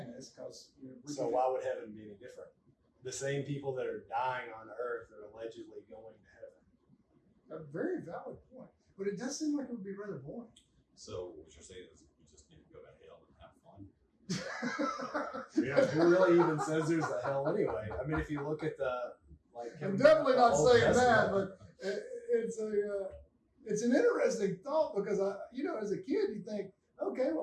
Because so why would heaven be any different? The same people that are dying on earth are allegedly going to heaven. A very valid point. But it does seem like it would be rather boring. So what you're saying is we just need to go to hell and have fun? Yeah, who really even says there's a hell anyway? I mean, if you look at I'm definitely not Old saying that, Testament, but it's an interesting thought, because as a kid you think, okay,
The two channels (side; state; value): both; identical; correlation 1.00